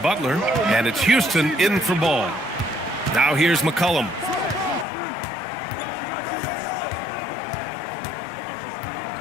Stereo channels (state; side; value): drops out; right; at 4.9 s